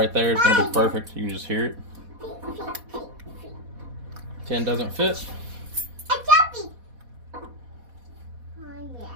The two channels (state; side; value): late; left; 4.1 ms